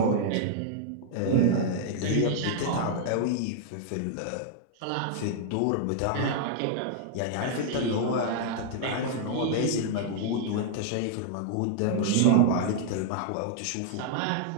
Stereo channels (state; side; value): different; both; correlation -0.01